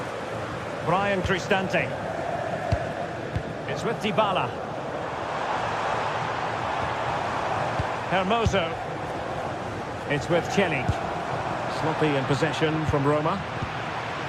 Brian Cristante. It's with Dybala. Hermoso. It's with Celik. Sloppy in possession from Roma.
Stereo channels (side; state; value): both; identical; correlation 1.00